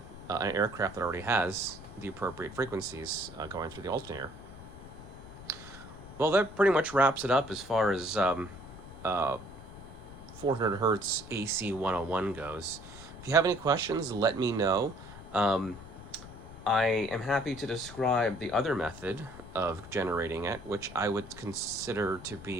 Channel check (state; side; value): noise; left; rumble, 15 dB below the sound